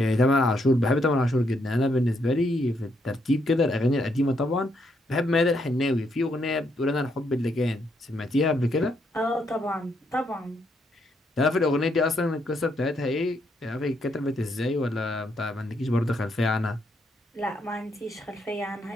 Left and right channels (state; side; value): normal; both; correlation 0.76